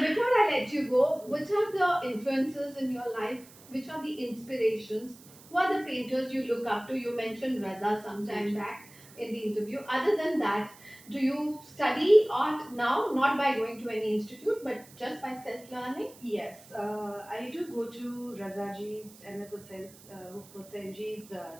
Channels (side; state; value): right; noise; hiss, 22 dB below the sound